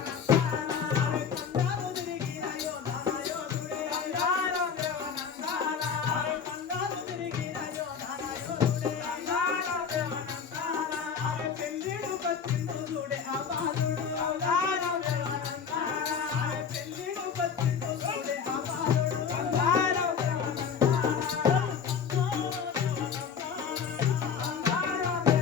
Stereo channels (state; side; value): quieter; right; 6.7 dB